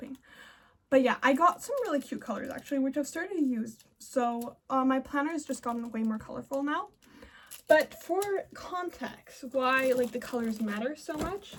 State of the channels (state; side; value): identical; both; correlation 1.00